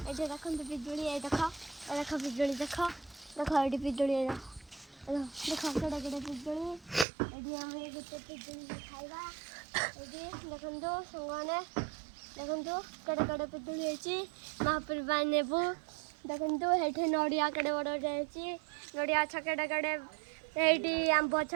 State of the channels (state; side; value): drops out; left; at 7.1 s